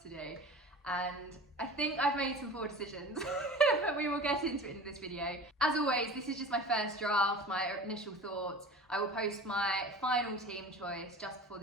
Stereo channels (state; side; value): normal; both; correlation 0.37